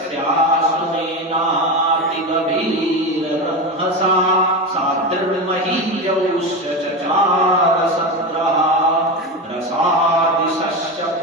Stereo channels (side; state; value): both; normal; correlation 0.19